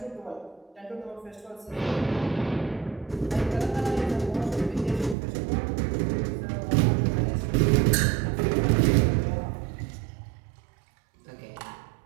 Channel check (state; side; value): drops out; left; at 5.2 s